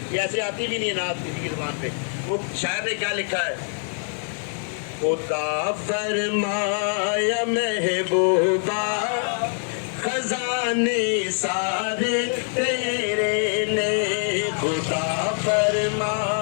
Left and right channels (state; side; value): silent; right; 62 dB below the other